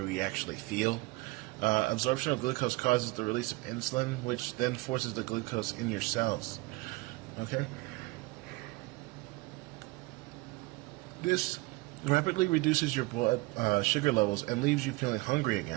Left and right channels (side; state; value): left; quieter; 22.7 dB